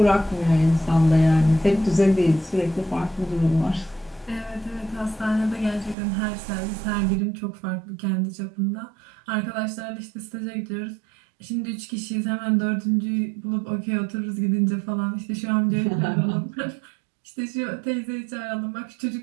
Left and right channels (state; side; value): drops out; left; at 6.0 s